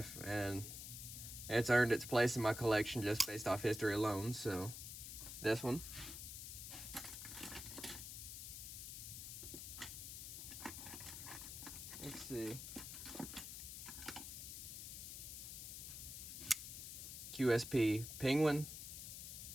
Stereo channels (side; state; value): left; noise; hiss, 8 dB below the sound